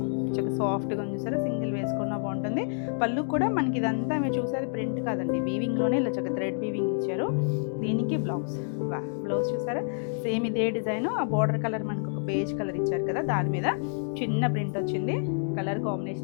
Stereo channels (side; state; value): right; silent; digital silence